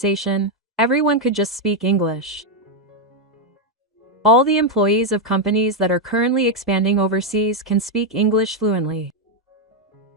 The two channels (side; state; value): both; normal; correlation 0.02